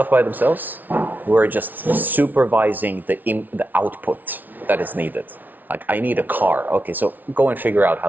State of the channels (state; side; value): late; left; 0.083 ms